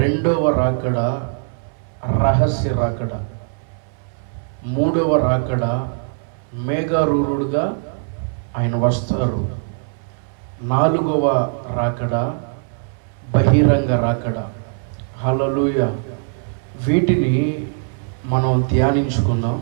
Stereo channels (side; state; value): left; silent; 63 dB below the other